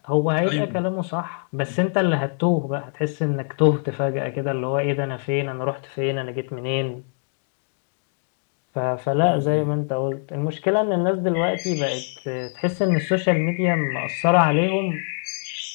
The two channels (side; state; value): right; silent; 63 dB below the other